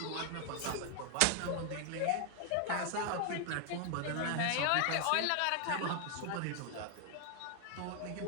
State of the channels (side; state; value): both; different; correlation 0.00